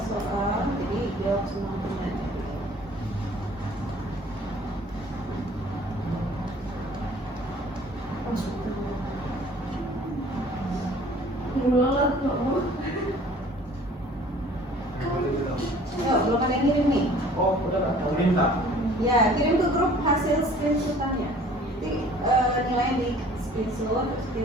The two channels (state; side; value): normal; both; correlation 0.51